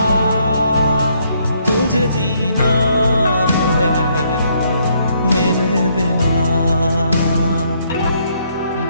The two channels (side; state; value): both; inverted; correlation -0.70